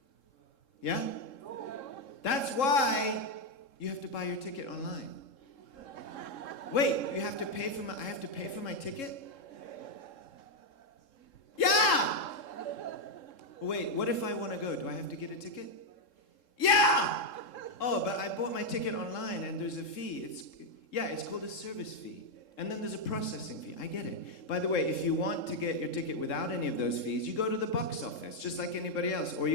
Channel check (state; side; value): late; right; 3.7 ms